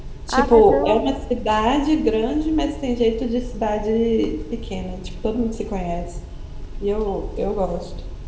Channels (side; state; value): both; identical; correlation 1.00